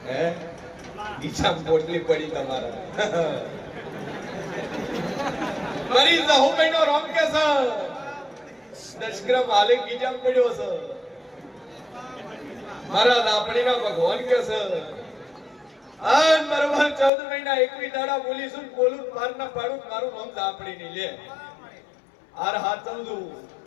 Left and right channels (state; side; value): drops out; right; at 17.1 s